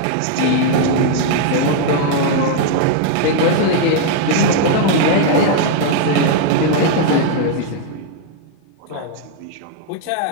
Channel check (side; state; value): both; different; correlation 0.00